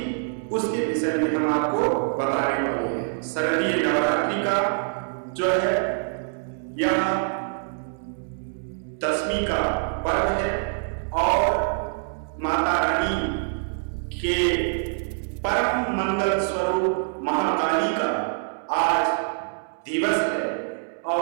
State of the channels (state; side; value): silent; left; 62 dB below the other